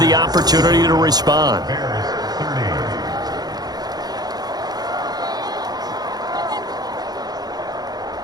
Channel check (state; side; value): late; left; 0.19 ms